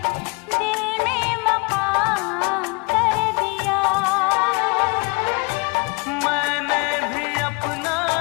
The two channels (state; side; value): quieter; right; 30.8 dB